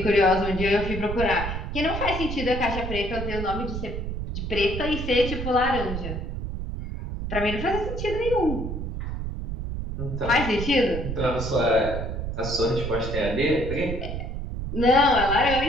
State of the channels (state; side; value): noise; right; rumble, 5 dB below the sound